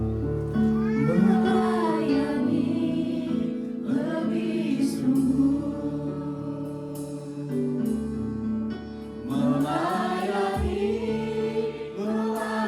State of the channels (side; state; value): both; identical; correlation 1.00